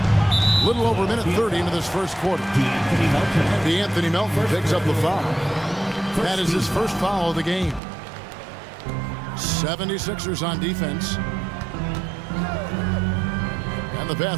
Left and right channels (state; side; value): drops out; left; at 7.8 s